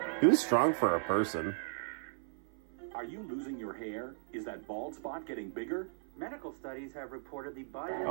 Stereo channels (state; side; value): silent; left; 54 dB below the other